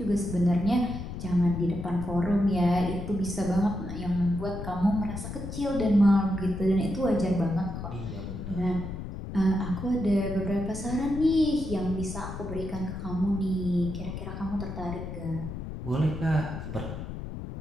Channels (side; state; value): left; noise; rumble, 8 dB below the sound